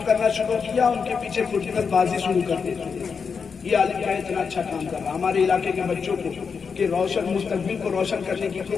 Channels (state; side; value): quieter; right; 5.8 dB